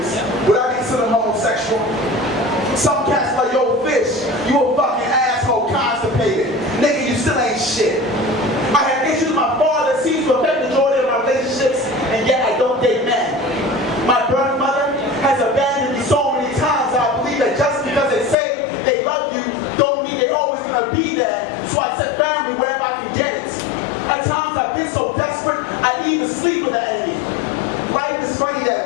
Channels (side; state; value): right; drops out; at 18.4 s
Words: would I be considered homosexual? Some cats like, yo, fish, you a fucking asshole, constipated. Nigga, you still ain't shit. I had issues with my father, seems to affect the majority of my relationships, and yet I don't date men. My birth mother has abandoned me so many times that I believe that just because they say they love you, don't mean they're always gonna be there, so I set family wherever I can get it. At times I've been so desperate, I even sleep with the enemy. Life is funny that